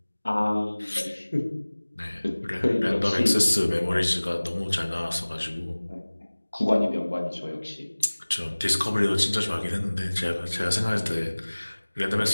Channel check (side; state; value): both; inverted; correlation -1.00